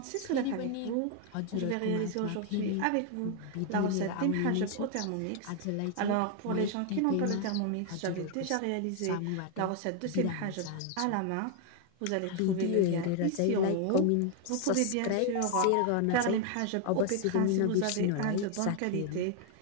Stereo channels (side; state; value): both; different; correlation 0.00